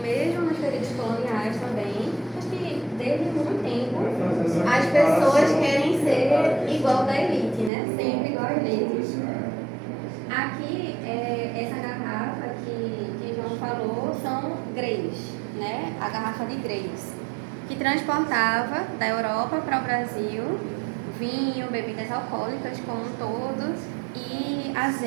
nos períodos coloniais também, acho que desde muito tempo, as pessoas querem ser igual da elite, né? Sempre igual à elite. Aqui, essa garrafa que João falou são greys, né? A garrafa de greys, que transportava da Europa para o Brasil vinho, bebidas alcoólicas como um todo e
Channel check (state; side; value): drops out; left; at 7.7 s